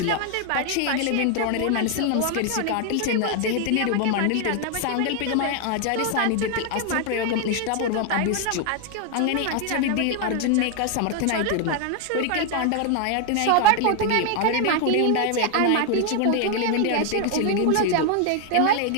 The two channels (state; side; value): different; both; correlation 0.00